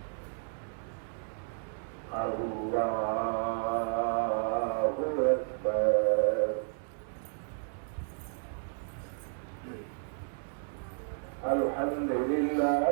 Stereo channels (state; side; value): silent; left; 56 dB below the other